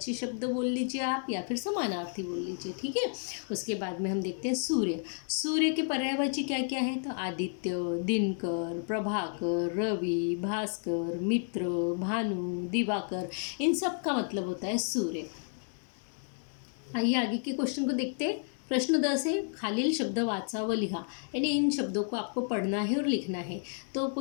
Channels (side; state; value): right; silent; 57 dB below the other